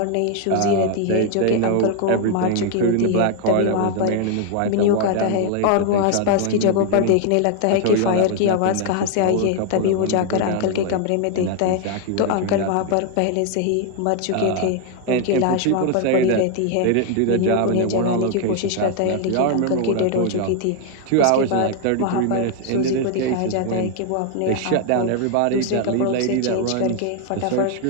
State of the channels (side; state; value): both; different; correlation 0.00